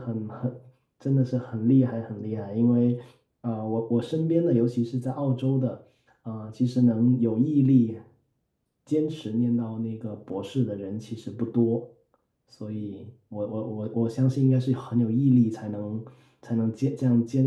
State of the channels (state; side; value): identical; both; correlation 1.00